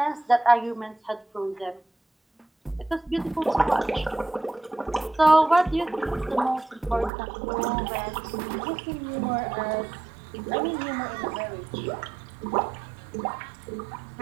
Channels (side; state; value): left; drops out; at 7.1 s